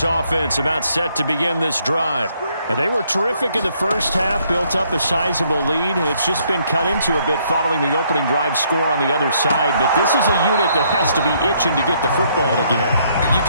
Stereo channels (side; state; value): both; inverted; correlation -0.69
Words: offense about set to begin this drive. And they were terrific in the first half, built up a sizable lead, and it's just been cut into a bit following the opening drive score on the other side. But this is a unit that has to be itching to get the football again. You